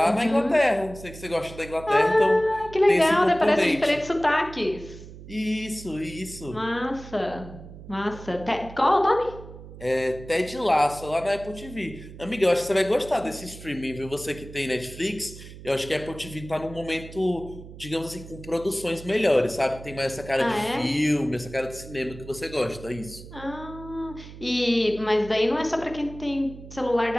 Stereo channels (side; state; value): right; noise; hum, 15 dB below the sound